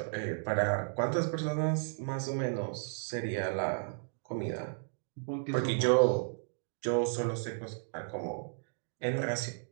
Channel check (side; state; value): left; silent; digital silence